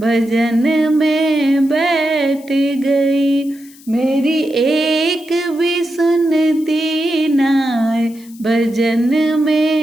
में बैठ गई। मेरी एक भी सुनती नाय भजन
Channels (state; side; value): noise; left; hiss, 24 dB below the sound